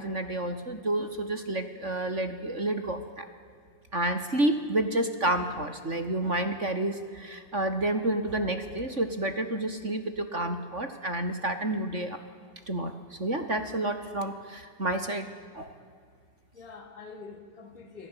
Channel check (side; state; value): left; late; 3.5 ms